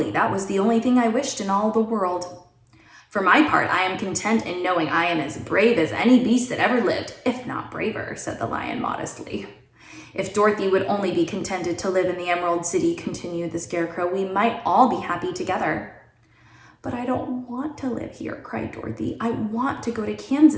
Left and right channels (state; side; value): identical; both; correlation 1.00